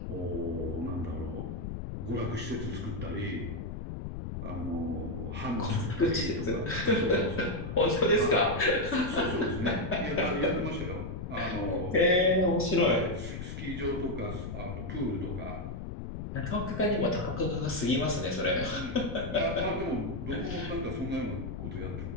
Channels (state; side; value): noise; left; rumble, 6 dB below the sound